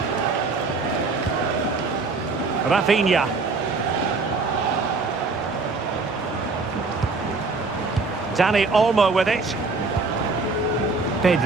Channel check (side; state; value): left; quieter; 3.9 dB